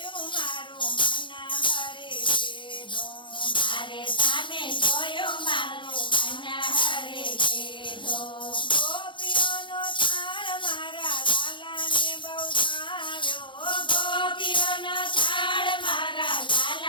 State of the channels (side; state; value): right; late; 0.24 ms